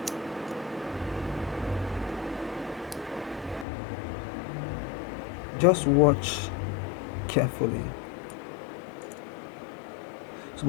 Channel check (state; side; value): drops out; right; at 3.7 s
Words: Just watch carefully. So,